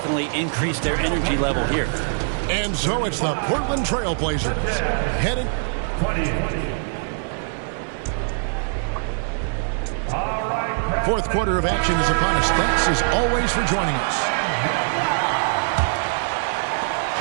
increased their energy level here. And so it's the Portland Trail Blazers heading. 28. Fourth quarter of action is upon us. Thanks as always for joining us.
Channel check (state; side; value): silent; left; digital silence